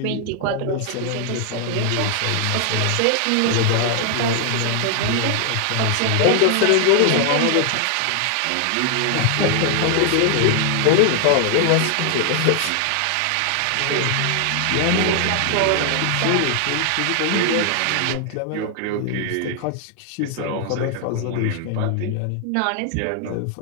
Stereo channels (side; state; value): both; different; correlation 0.00